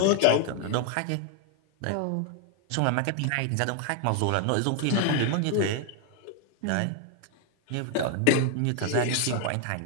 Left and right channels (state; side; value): different; both; correlation 0.00